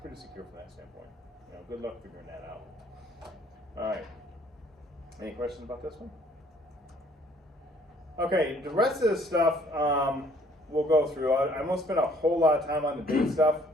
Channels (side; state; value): both; normal; correlation 0.60